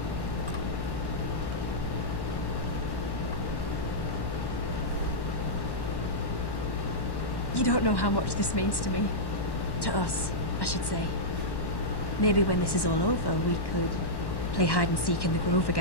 You don't know how much this means to me. To us, I should say. Maybe when this is all over, we could play hide and seek in the grove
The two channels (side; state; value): right; late; 1.1 ms